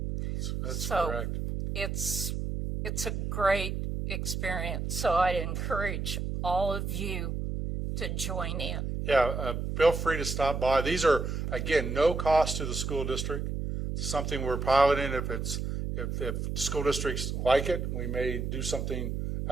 That's So correct. it's a great experience. So I'd encourage all of you to join in. Yeah, feel free to stop by. These are, again, no cost to the school district. It's something we're piloting. If school districts like it, we may do something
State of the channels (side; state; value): right; noise; hum, 3 dB below the sound